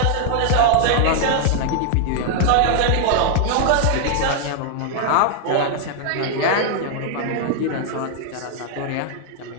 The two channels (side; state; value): both; different; correlation 0.00